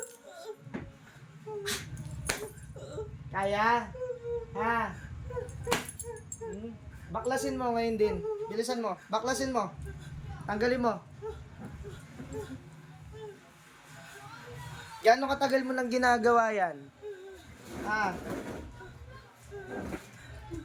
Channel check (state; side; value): identical; both; correlation 1.00